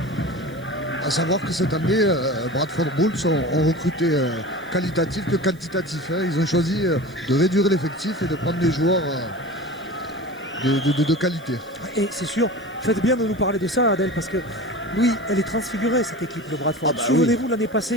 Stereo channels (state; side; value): noise; right; hiss, 27 dB below the sound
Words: À savoir que cette année, Bradford Bulls ont recruté qualitatif que quantitatif. Hein. Ils ont choisi de réduire l'effectif et de prendre des joueurs de qualité. Et c'est sûr, faites bien de nous parler de ça, Adèle, parce que oui, elle est transfigurée, cette équipe de Bradford. Ah bah Souvenez-vous l'année